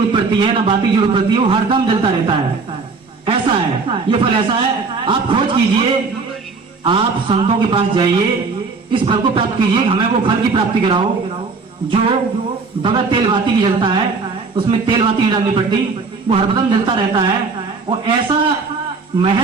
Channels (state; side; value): quieter; left; 4.4 dB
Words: पड़ती है, ना बाती की जरूरत पड़ती है, वो हरदम जलता रहता है। ऐसा है ये फल, ऐसा है। आप खोज कीजिए, आप संतों के पास जाइए, इस फल को प्राप्त कीजिए, हमें वो फल की प्राप्ति कराओ जो बगैर तेल बाती की जलता है, उसमें तेल बाती नहीं डालनी पड़ती, वो हरदम जलता रहता है। और ऐसा